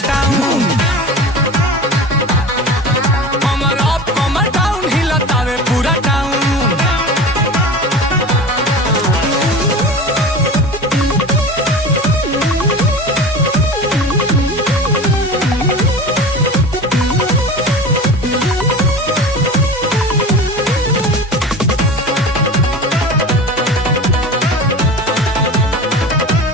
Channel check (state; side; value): normal; both; correlation 0.33